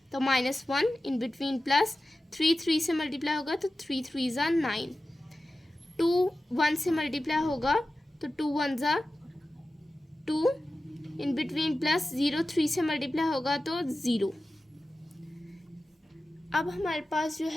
तो -1, इन बिटवीन प्लस, 3 3 से मल्टीप्लाई होगा तो 3 3 ज़ा 9। 2 1 से मल्टीप्लाई होगा तो 2 1 ज़ा 2, इन बिटवीन प्लस, 0 3 से मल्टीप्लाई होगा तो 0। अब हमारे पास जो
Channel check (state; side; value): normal; both; correlation 0.94